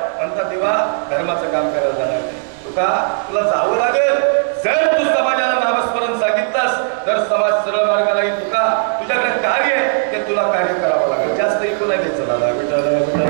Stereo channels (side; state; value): left; silent; 68 dB below the other